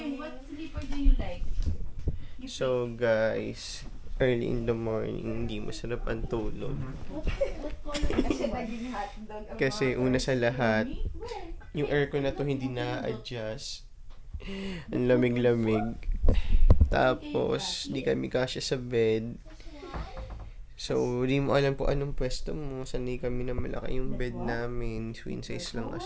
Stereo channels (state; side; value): identical; both; correlation 1.00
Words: What sleeper do you like? So guys, early in the morning, hindi masarap ang tulog. Kasi una sa lahat, yung aircon na to hindi na-adjust. Ang lamig-lamig. Tapos, di kami kasya sa bed. So, di mo alam po anong pwesto mo. Sanay kami na malaki yung bed namin. Twin size lang